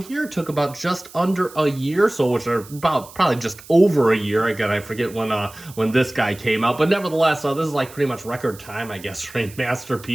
here. It took about just under a year, so which are about probably just over a year. Again, I forget when this guy came out, but nevertheless, this is like pretty much record time, I guess, for a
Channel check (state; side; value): noise; right; hiss, 20 dB below the sound